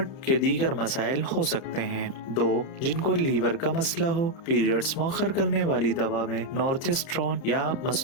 के दीगर मसाइल हो सकते हैं। 2, जिनको लीवर का मसला हो। पीरियड्स मौखर करने वाली दवा में नोरेथिस्ट्रोन या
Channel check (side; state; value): right; late; 30 ms